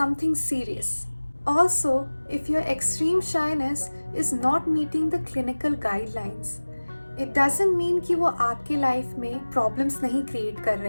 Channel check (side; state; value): both; inverted; correlation -1.00